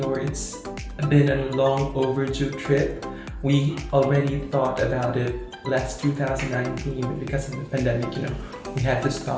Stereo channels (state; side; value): identical; both; correlation 1.00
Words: It's been a long overdue trip. We already thought about it last 2019, but because of the pandemic, we had to